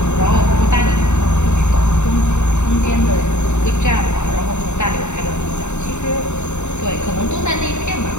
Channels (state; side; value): late; right; 0.83 ms